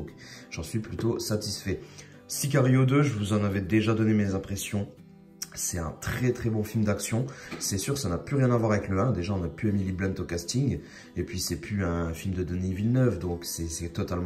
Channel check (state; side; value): identical; both; correlation 1.00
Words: j'en suis plutôt satisfait. Sicario 2, je vous en avais déjà donné mes impressions. C'est un très très bon film d'action. C'est sûr, ça n'a plus rien à voir avec le 1. Déjà, on n'a plus Emily Blunt au casting. Et puis, c'est plus un film de Denis Villeneuve. Donc, c'est